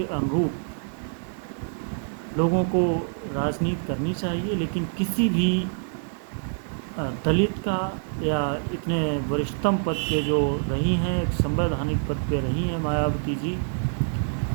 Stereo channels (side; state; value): left; silent; 61 dB below the other